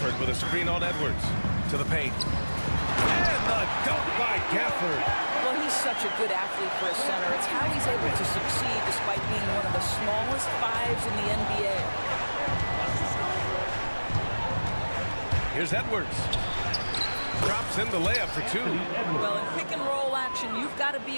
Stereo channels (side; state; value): both; inverted; correlation -1.00